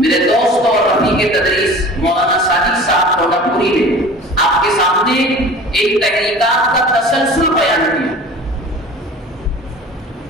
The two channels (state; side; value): normal; both; correlation 0.41